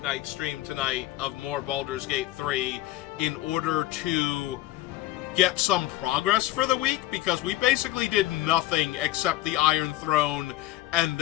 night stream tonight of more Baldur's Gate 3 in order to get some progress for the week, because we basically did nothing except the Iron Throne and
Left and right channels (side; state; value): right; quieter; 15.9 dB